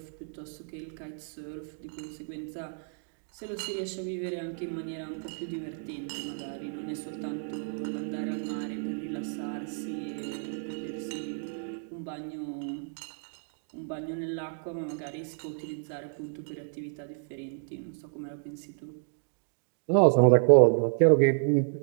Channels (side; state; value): left; silent; 56 dB below the other